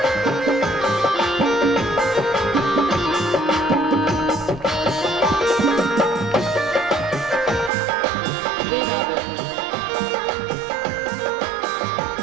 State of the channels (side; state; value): left; drops out; at 7.7 s